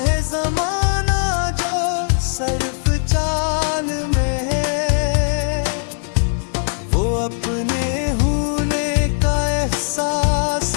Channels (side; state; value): right; silent; digital silence